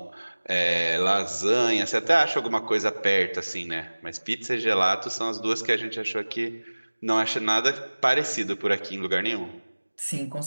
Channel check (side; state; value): both; inverted; correlation -1.00